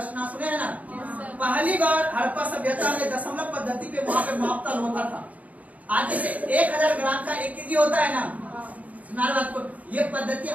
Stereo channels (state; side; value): late; left; 0.072 ms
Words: ना, सुने है ना। पहली बार हड़प्पा सभ्यता में दशमलव पद्धति पे वहां पे मापतल होता था। आज जैसे 1000 ग्राम का 1 केजी होता है ना, बात को ये पद्धति